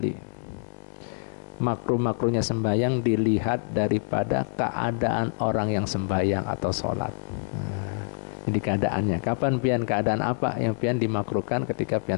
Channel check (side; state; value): right; silent; 61 dB below the other